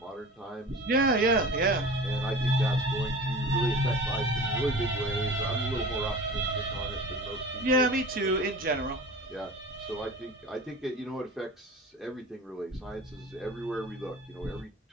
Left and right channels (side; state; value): both; normal; correlation 0.37